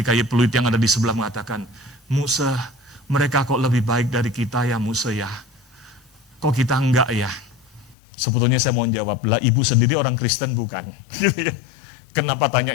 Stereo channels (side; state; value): right; drops out; at 8.0 s